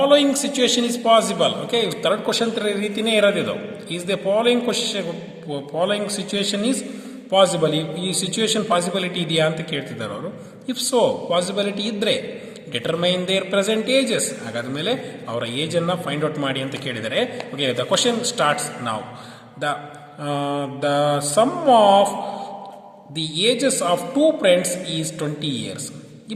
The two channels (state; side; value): identical; both; correlation 1.00